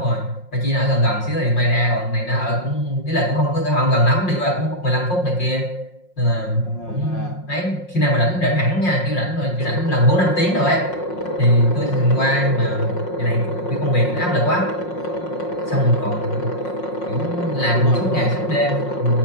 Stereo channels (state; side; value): late; right; 5.5 ms